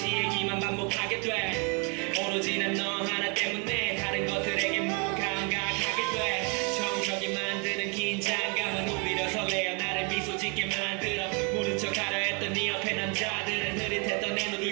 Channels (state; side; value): quieter; left; 34.3 dB